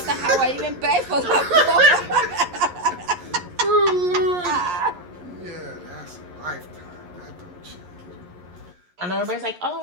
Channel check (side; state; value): left; late; 11 ms